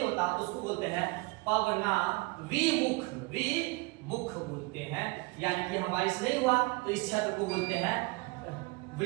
होता, उसको बोलते हैं पवना विमुख बोलते हैं। यानी कि हम बारिश नहीं हुआ तो इस क्षेत्र को बोलते हैं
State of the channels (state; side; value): quieter; left; 25.4 dB